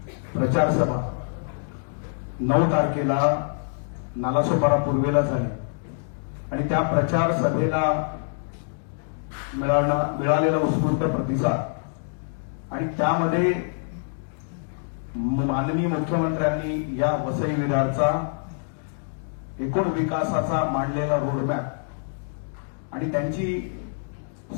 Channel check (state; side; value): silent; right; digital silence